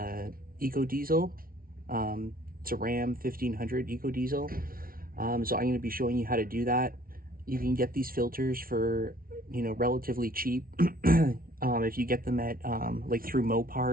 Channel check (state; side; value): late; left; 0.43 ms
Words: EcoDiesel. It's a Ram 1500 EcoDiesel. So I'm going to be showing you how to do that. You can get these filters for, relatively cheap. If you get them at like through